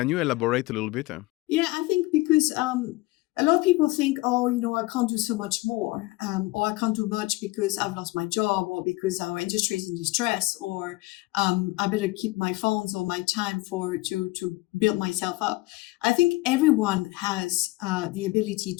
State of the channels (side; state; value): right; quieter; 20.9 dB